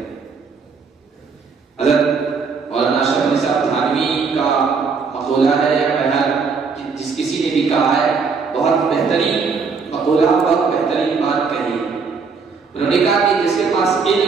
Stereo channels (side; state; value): left; quieter; 5.1 dB